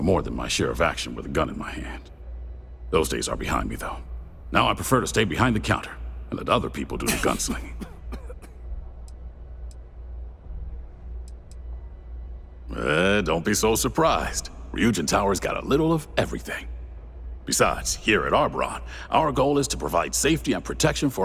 than my share of action with a gun in my hand. Those days are behind me, though. Now I prefer to stay behind the counter and let other people do the gunslinging. Don't be so surprised. Ryujin Tower's got a little of everything. Besides, here at Arboron, our goal is to provide safety and protection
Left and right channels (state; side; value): identical; both; correlation 1.00